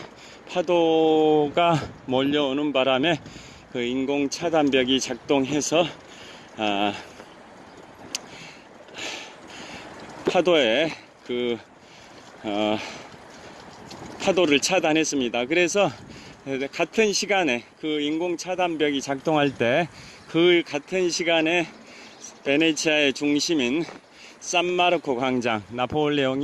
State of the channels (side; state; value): both; identical; correlation 1.00